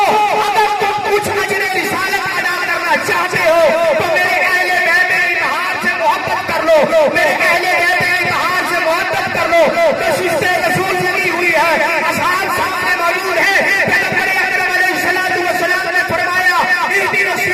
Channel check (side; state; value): both; identical; correlation 1.00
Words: अगर तुम कुछ अजर रिसालत अदा करना चाहते हो तो मेरे अहले बैत इत्तेहाद से मोहब्बत कर लो, मेरे अहले बैत इत्तेहाद से मोहब्बत कर लो। तो शिष्टे रसूल लगी हुई है,